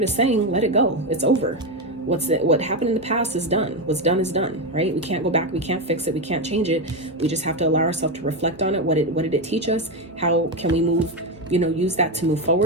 is saying, let it go. It's over. What happened in the past is done. What's done is done, right? We can't go back. We can't fix it. We can't change it. We just have to allow ourselves to reflect on it. What did it teach us? How can we move, you know, use that to move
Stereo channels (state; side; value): normal; both; correlation 0.11